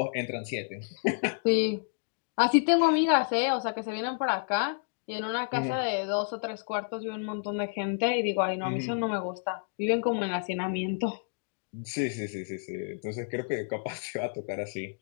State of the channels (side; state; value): right; silent; digital silence